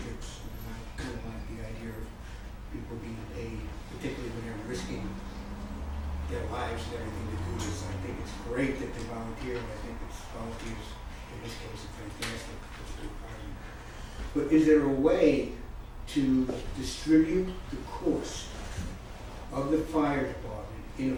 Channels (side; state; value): both; identical; correlation 1.00